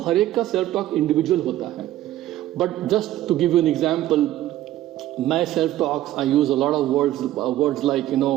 हर एक का सेल्फ टॉक इंडिविजुअल होता है, but just to give you an example, my self talks, I use a lot of words like,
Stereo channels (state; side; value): quieter; left; 14.0 dB